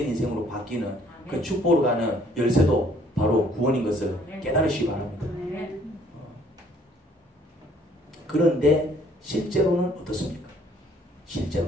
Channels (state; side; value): normal; both; correlation 0.61